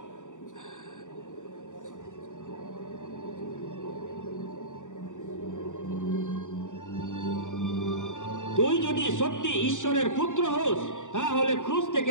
তুই যদি সত্যি ঈশ্বরের পুত্র হোস, তাহলে ক্রুশ থেকে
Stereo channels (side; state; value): right; late; 0.86 ms